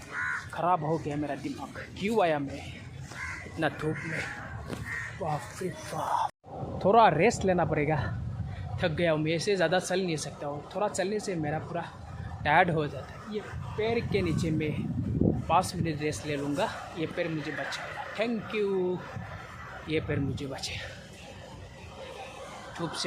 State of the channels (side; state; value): both; identical; correlation 1.00